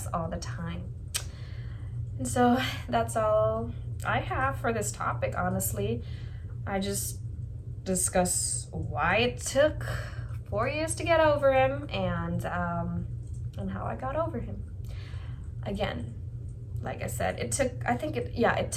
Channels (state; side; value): identical; both; correlation 1.00